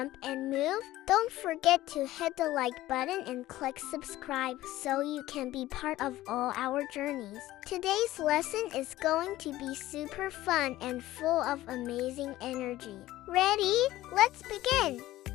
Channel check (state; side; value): quieter; right; 15.8 dB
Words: and move? Don't forget to hit the like button and click subscribe so you can be part of all our journeys. Today's lesson is going to be super fun and full of amazing energy. Ready? Let's begin!